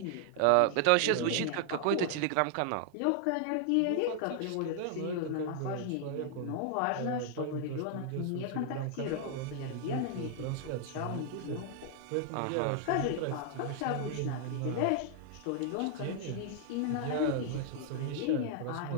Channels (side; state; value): both; different; correlation 0.00